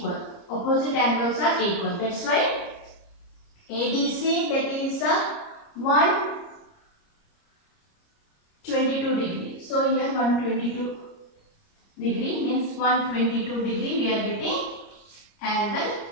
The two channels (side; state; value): right; late; 30 ms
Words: Opposite angles are equal. That's why ADC, that is 122 degree. So here 122 degree means 122 degree we are getting angle